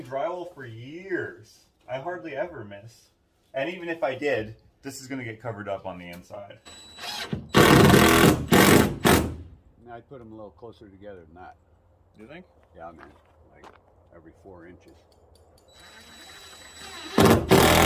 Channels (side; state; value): both; identical; correlation 1.00